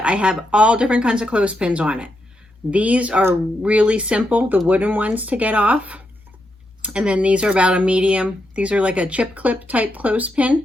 I have all different kinds of clothespins on it. These are really simple, the wooden ones to get off. And then these are about a medium. These are like a chip clip type clothespin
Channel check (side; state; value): both; normal; correlation 0.83